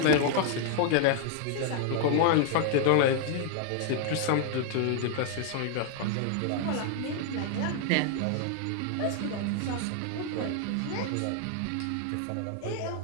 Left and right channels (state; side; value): different; both; correlation 0.00